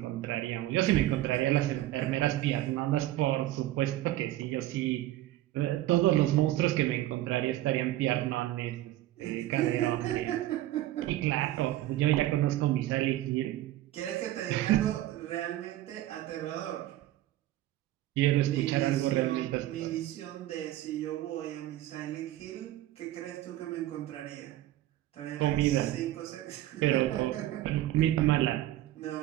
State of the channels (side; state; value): left; quieter; 14.8 dB